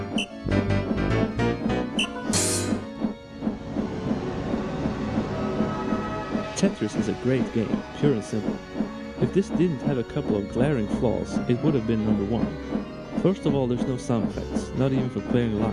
Tetris is a great game, pure and simple. If this didn't have a couple of glaring flaws, it would have been number 1. First of all, there's no sound effects, not even for clearing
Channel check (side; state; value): both; identical; correlation 1.00